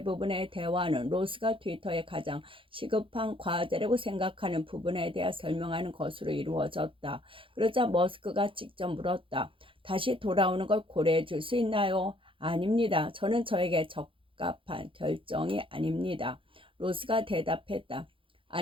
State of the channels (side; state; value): left; late; 0.25 ms